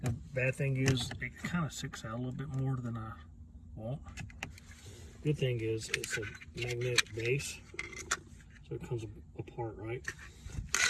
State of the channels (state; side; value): identical; both; correlation 1.00